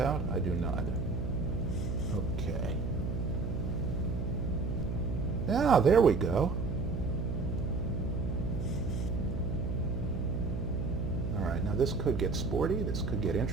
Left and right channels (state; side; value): noise; right; hum, 2 dB below the sound